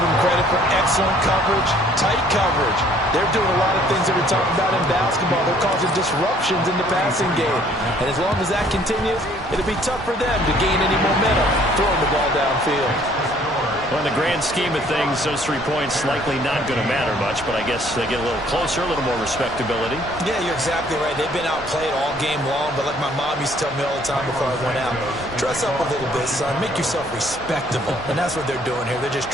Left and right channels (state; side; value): normal; both; correlation 0.60